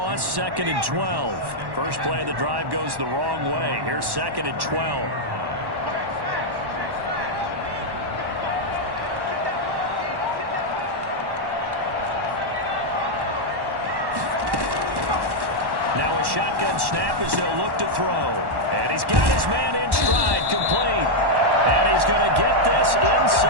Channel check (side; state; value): left; late; 1.1 ms